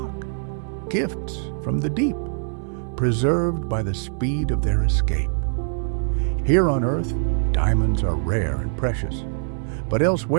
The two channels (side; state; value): left; silent; 63 dB below the other